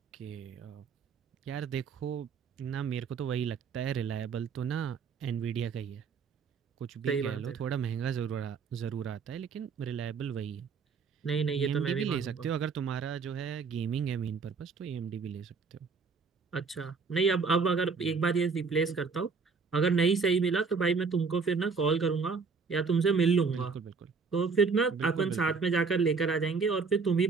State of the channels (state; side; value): quieter; left; 5.1 dB